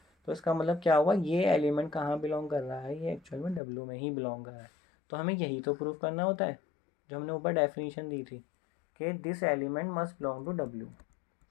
तो इसका मतलब क्या हुआ, ये एलिमेंट कहाँ बिलोंग कर रहा है, ये एक्चुअल में W में ही बिलोंग कर रहा है। तो हमें यही तो प्रूफ करना होता है जो हमने ऊपर डेफिनेशन दी थी कि this element must belong to W।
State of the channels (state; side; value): drops out; right; at 3.6 s